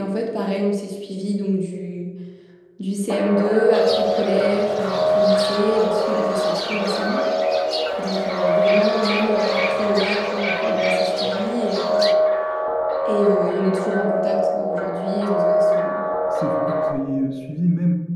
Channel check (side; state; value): both; identical; correlation 1.00